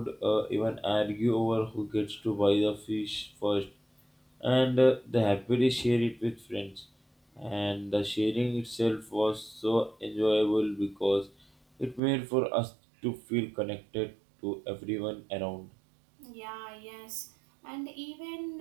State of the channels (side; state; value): left; drops out; at 12.0 s